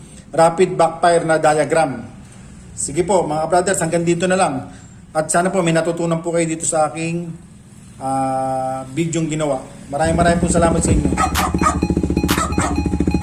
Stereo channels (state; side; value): identical; both; correlation 1.00